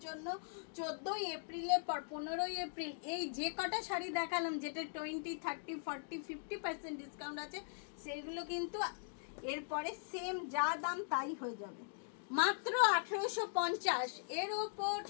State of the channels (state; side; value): silent; right; digital silence